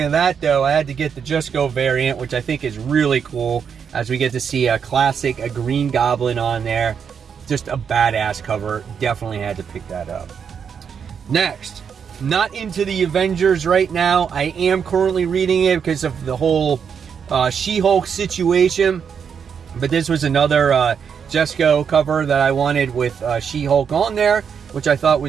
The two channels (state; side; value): quieter; left; 7.0 dB